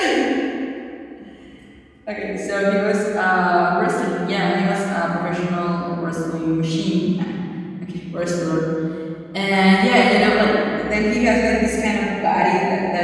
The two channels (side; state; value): both; identical; correlation 1.00